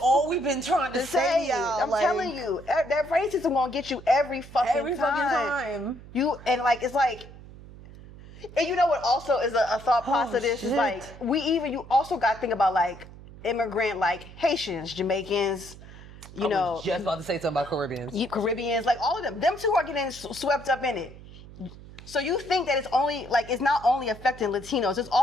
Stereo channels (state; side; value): noise; right; hum, 17 dB below the sound